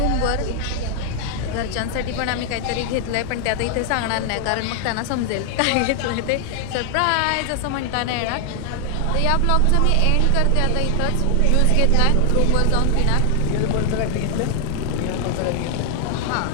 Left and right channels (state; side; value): different; both; correlation 0.00